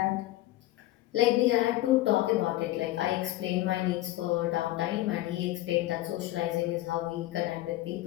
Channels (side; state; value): right; quieter; 16.4 dB